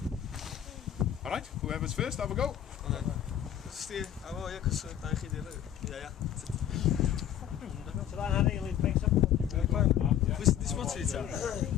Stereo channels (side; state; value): right; quieter; 10.4 dB